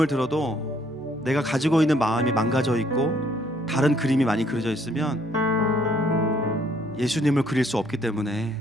들어도 내가 가지고 있는 마음이 망가져 있고 다른 그림이 많이 그려져 있으면 예수님을 그릴 수 없기 때문에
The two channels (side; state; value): right; noise; hum, 26 dB below the sound